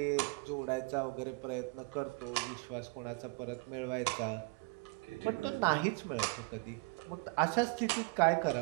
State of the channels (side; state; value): left; quieter; 27.7 dB